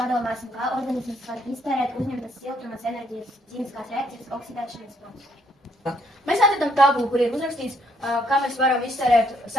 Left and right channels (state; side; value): normal; both; correlation 0.69